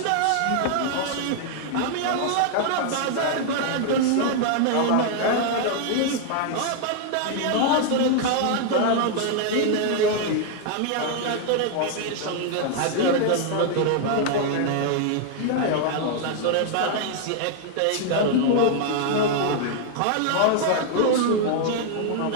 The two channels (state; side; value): different; both; correlation 0.00